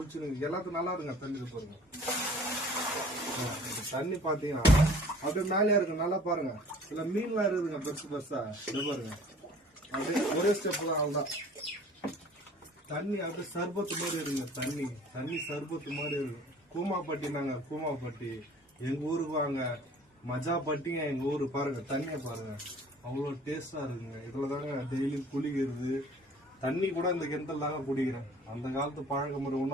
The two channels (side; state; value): both; normal; correlation 0.50